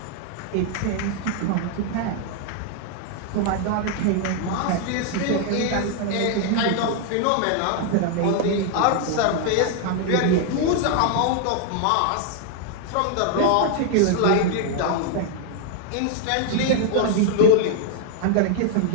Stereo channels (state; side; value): different; both; correlation 0.00